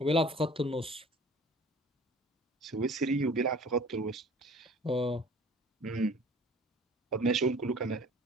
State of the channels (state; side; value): normal; both; correlation 0.47